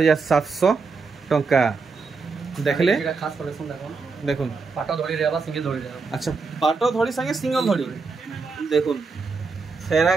टंका देखले खास कलेक्शन देखो देखुन पाटो धड़ी रेवा सिंगल धड़ी रेवा अच्छा पाटो धड़ी संगे सिंगल धड़ी देखुन फेरा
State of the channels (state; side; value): quieter; left; 4.6 dB